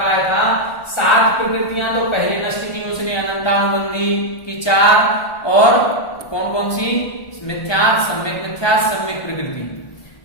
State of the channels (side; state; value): right; late; 1.2 ms